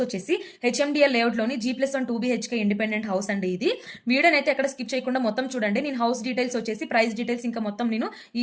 వచ్చేసి HMDL లేఅవుట్లోని G+1 2BHK independent house అండి. ఇది వీడియోని అయితే ఎక్కడ స్కిప్ చేయకుండా మొత్తం చూడండి. నేను హౌస్ డీటెయిల్స్ వచ్చేసి ప్రైస్ డీటెయిల్స్ ఇంకా మొత్తం నేను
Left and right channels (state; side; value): identical; both; correlation 1.00